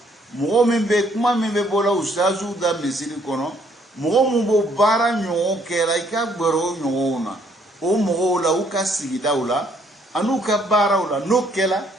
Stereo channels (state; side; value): normal; both; correlation 0.66